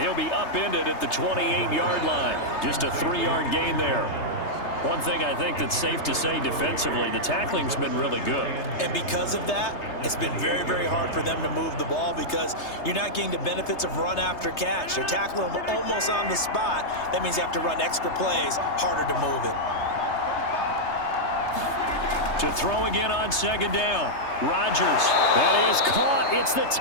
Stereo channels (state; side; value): late; right; 3.3 ms